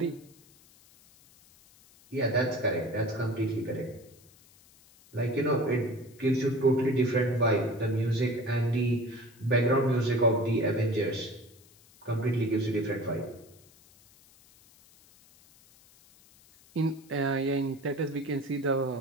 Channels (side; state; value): left; noise; hiss, 27 dB below the sound